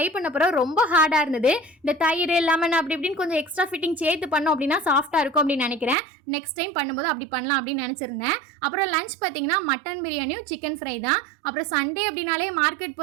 பண்ண பிறகு ரொம்ப ஹார்டாக இருந்தது. இந்த தயிர் லெமன் அப்படி இப்படின்னு கொஞ்சம் எக்ஸ்ட்ரா ஃபிட்டிங் சேர்த்து பண்ணோம் அப்படின்னா சாஃப்டாக இருக்கும் அப்படின்னு நினைக்கிறேன். நெக்ஸ்ட் டைம் பண்ணும்போது அப்படி பண்ணலாம் அப்படின்னு நினச்சிருந்தேன். அப்புறம் லஞ்ச் பார்த்தீங்கன்னா மட்டன் பிரியாணியும் சிக்கன் ஃப்ரை தான். அப்புறம் சண்டே அப்படின்னாலே மார்க்கெட்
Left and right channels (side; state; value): left; drops out; at 6.0 s